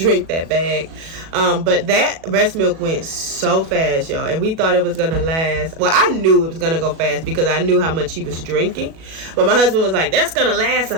that bag. But that breast milk went so fast, y'all, and we thought it was gonna last. Well, I knew it was gonna go fast because I knew how much he was drinking, but my husband was like, that's gonna last a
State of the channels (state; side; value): late; left; 37 ms